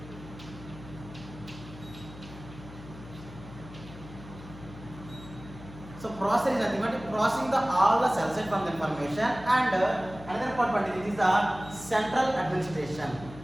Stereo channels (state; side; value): noise; left; hum, 16 dB below the sound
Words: so processor is nothing but processing the all the cell site from the information, and another important is the central administration.